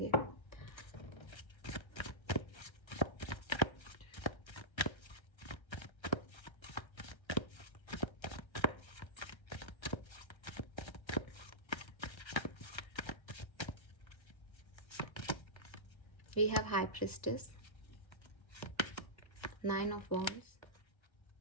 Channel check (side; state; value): right; late; 1.3 ms